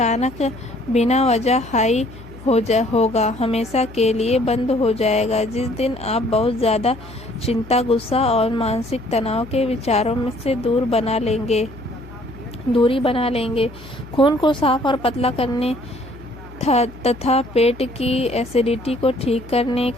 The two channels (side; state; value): left; noise; hum, 18 dB below the sound